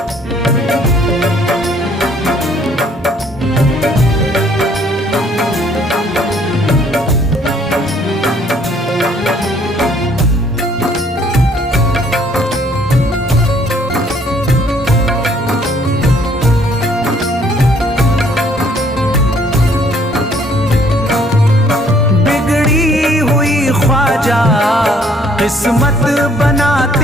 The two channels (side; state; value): both; normal; correlation 0.62